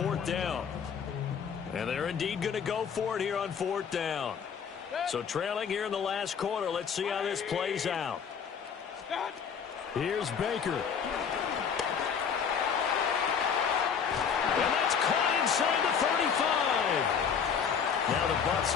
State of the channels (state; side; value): quieter; right; 6.9 dB